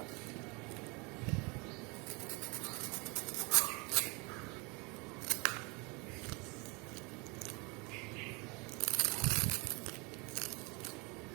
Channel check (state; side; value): quieter; left; 29.1 dB